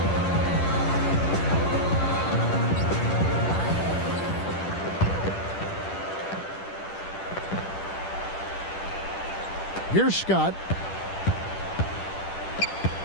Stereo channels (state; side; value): late; right; 10 ms